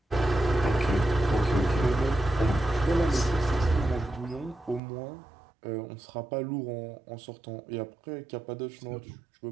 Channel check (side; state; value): left; drops out; at 4.8 s